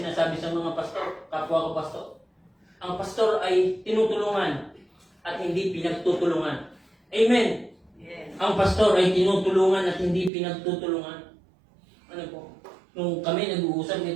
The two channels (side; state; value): left; drops out; at 10.3 s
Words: sa mga pastor, kapwa ko pastor. Ang pastor ay tinutulungan at hindi pinagtutulungan. Amen. Yes. Ang pastor ay tinutulungan at hindi pinagtutulungan. Ano po? Nung kami nag-uusap